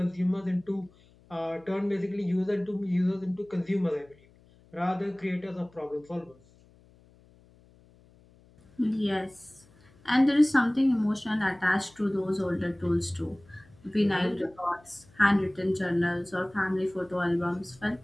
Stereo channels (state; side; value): noise; left; hum, 28 dB below the sound